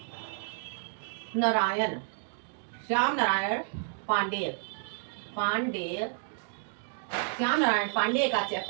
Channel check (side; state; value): left; silent; 57 dB below the other